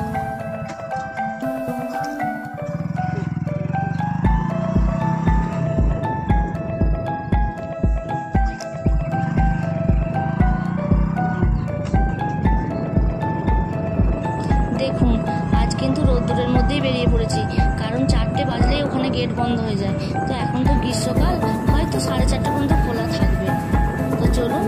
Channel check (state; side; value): identical; both; correlation 1.00